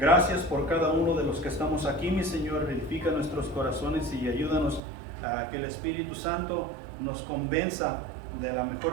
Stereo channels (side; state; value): left; drops out; at 4.8 s